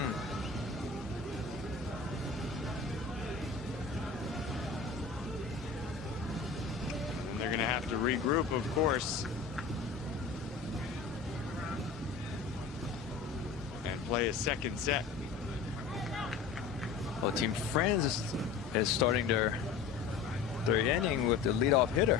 they're going to have to regroup, of course, and play a second set. Well, Team France is starting their inning with the leadoff hitter.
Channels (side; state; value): right; quieter; 5.4 dB